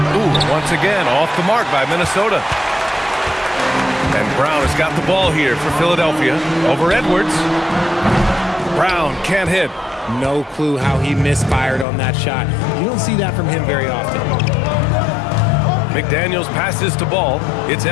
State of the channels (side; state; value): right; drops out; at 11.9 s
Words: Ooh, once again, off the mark by Minnesota. And Brown has got the ball here for Philadelphia. Over Edwards. Brown can't hit. No clue how he misfired on that shot. You don't see that from him very often. McDaniels passes to Ball. It's